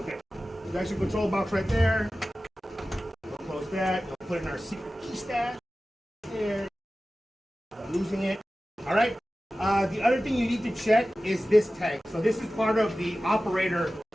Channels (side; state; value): both; normal; correlation 0.95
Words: That's your control box right there. We'll close that. We'll put in our secret key stash. There. Not losing it. All right. The other thing you need to check is this tank. So this is part of the operator